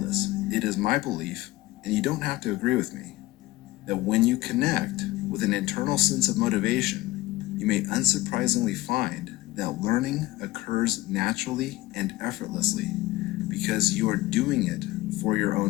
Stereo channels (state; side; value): quieter; right; 18.3 dB